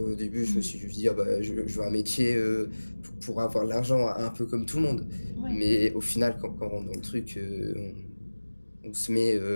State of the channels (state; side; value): inverted; both; correlation -1.00